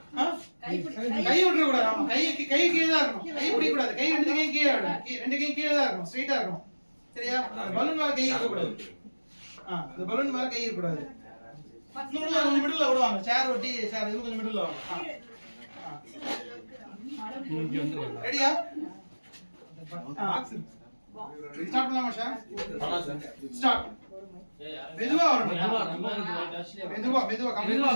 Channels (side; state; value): both; inverted; correlation -1.00